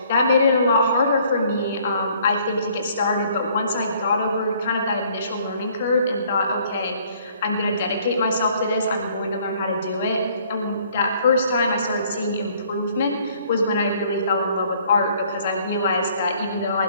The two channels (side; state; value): both; inverted; correlation -0.60